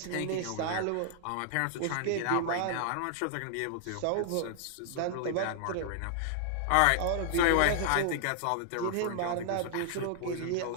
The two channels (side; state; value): both; different; correlation -0.01